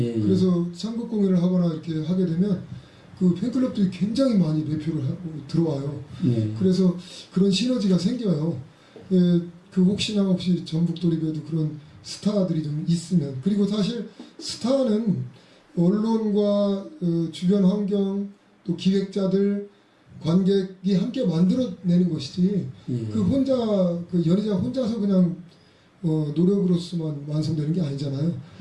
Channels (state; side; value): identical; both; correlation 1.00